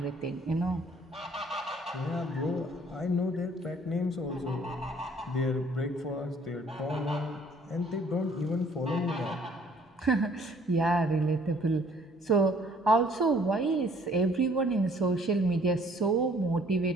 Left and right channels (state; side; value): normal; both; correlation 0.59